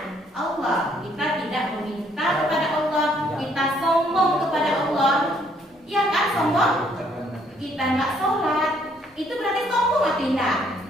Allah. Kita tidak meminta kepada Allah, kita sombong kepada Allah. Ya kan, sombong? Kita nggak sholat, itu berarti sombong atau tidak?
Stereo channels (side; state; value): both; normal; correlation 0.66